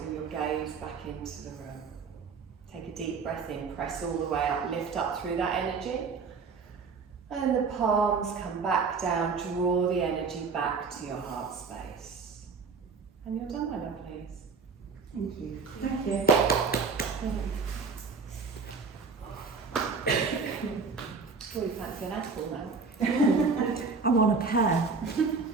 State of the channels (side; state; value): left; quieter; 4.8 dB